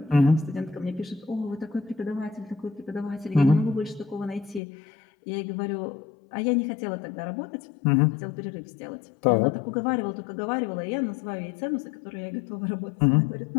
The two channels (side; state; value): right; drops out; at 4.6 s